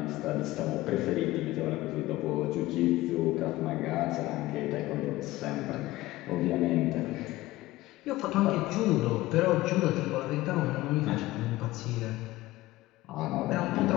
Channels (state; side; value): quieter; right; 17.8 dB